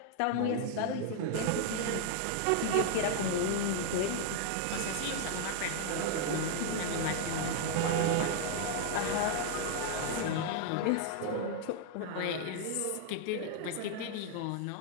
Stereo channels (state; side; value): different; both; correlation 0.00